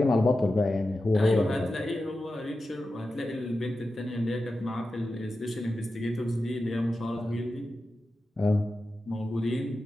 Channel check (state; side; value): normal; both; correlation 0.92